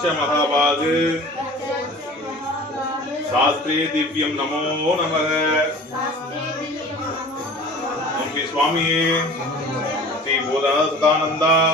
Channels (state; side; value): normal; both; correlation 0.42